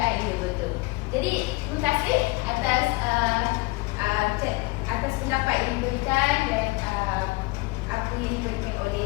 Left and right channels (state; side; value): quieter; right; 23.3 dB